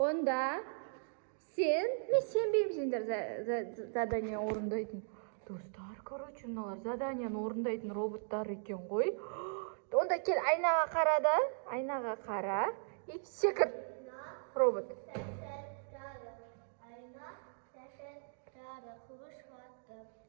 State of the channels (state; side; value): silent; left; digital silence